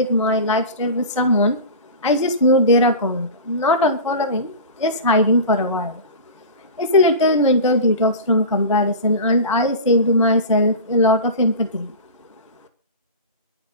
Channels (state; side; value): inverted; both; correlation -0.31